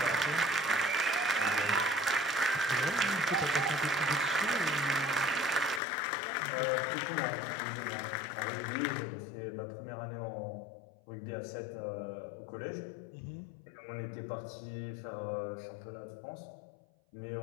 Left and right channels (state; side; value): drops out; right; at 5.8 s